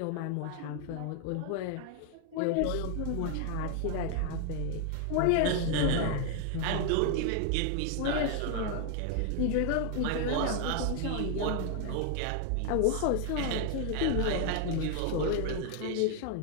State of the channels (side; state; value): both; different; correlation 0.00